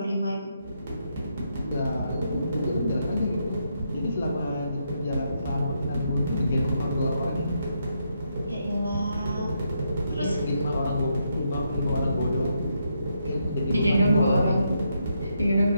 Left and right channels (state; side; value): inverted; both; correlation -0.79